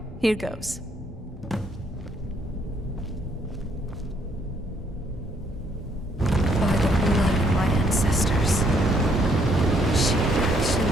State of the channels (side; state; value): both; normal; correlation 0.68